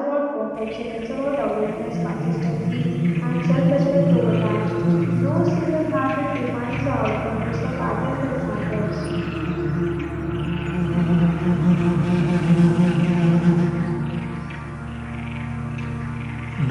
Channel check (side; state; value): both; identical; correlation 1.00